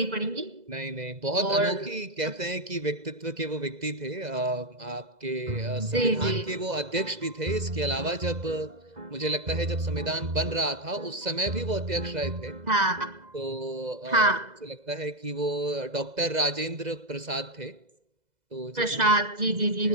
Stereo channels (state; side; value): late; left; 2.0 ms